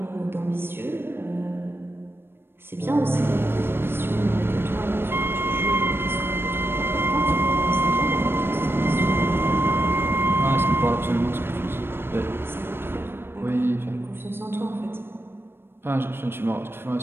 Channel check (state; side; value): late; left; 0.11 ms